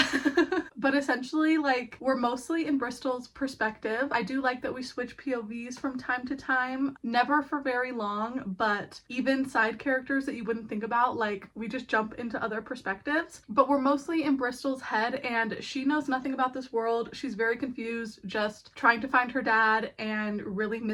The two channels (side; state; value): both; identical; correlation 1.00